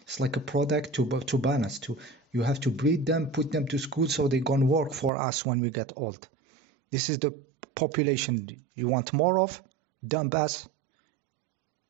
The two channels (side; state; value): left; drops out; at 5.1 s